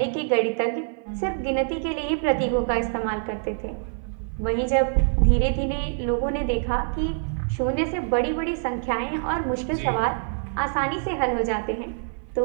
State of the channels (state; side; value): silent; left; 56 dB below the other